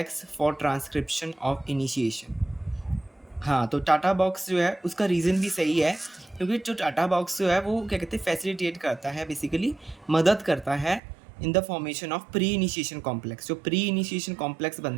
for transcription of initiation. हाँ, तो टाटा बॉक्स जो है उसका रीज़न भी सही है, क्योंकि जो टाटा बॉक्स जो है वो क्या कहते हैं, फैसिलिटेट करता है, बेसिकली मदद करता है in the formation of pre initiation complex. जो प्री इनिशिएशन कॉम्प्लेक्स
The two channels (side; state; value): left; drops out; at 11.0 s